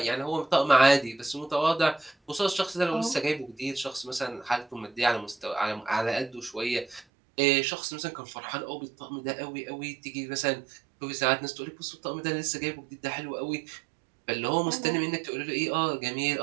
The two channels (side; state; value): left; drops out; at 7.1 s